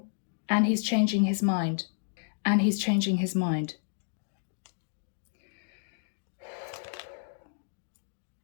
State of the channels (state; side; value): silent; right; digital silence